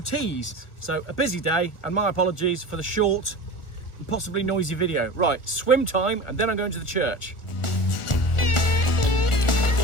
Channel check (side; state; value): right; late; 1.4 ms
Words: So a busy day, and my apologies for the short and possibly noisy video. Right, swim time, and then I'm going to the church.